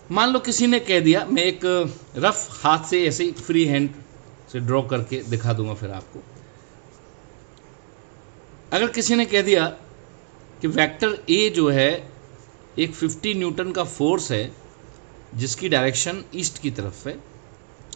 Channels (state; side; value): silent; left; digital silence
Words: मान लो किसी ने कह दिया, मैं एक रफ हाथ से ऐसे ही फ्री हैंड से ड्रॉ करके दिखा दूंगा फिर आपको। अगर किसी ने कह दिया कि वेक्टर ए जो है एक 50 न्यूटन का फोर्स है जिसकी डायरेक्शन ईस्ट की तरफ है,